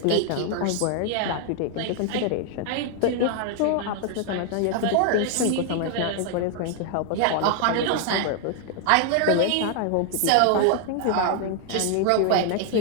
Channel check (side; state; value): both; different; correlation 0.00